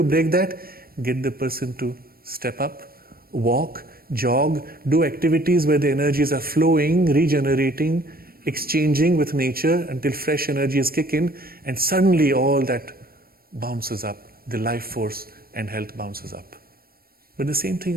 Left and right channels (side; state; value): left; late; 0.44 ms